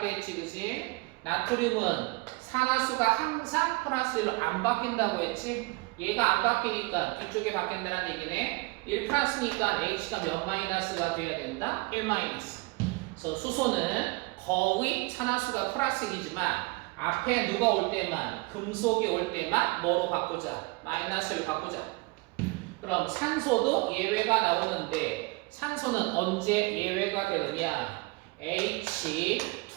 때 했지, 그치? 나트륨은 산화수가 항상 플러스 1로 안 바뀐다고 했지? 얘가 안 바뀌니까 뒤쪽에 바뀐다는 얘기네. 1 플러스니까 H가 몇 마이너스가 돼야 된다? 1 마이너스. 그래서 수소는 거의 산화수가 플러스 1이지만 앞에 누가 올 때만, 금속이 올 때만 뭐로 바꾸자? 마이너스를 바꾸자. 그럼 산소도 예외가 나오는데 산소는 언제 예외가 되느냐? H2,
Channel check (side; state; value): left; quieter; 25.7 dB